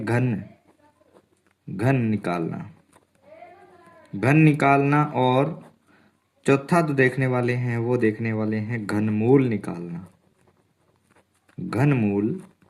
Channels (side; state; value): both; identical; correlation 1.00